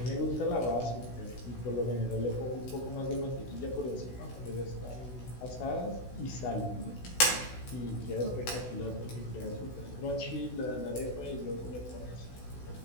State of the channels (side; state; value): right; late; 16 ms